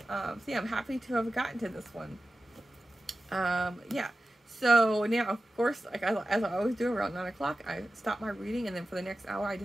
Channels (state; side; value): normal; both; correlation 0.94